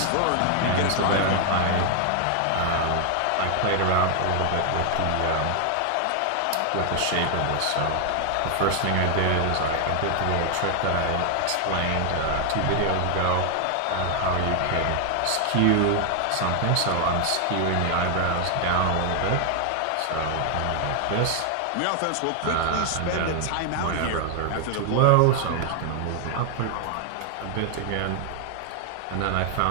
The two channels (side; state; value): both; different; correlation 0.00